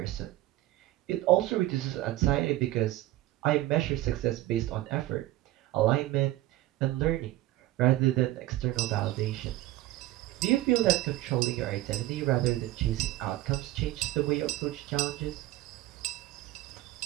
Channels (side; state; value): left; quieter; 16.1 dB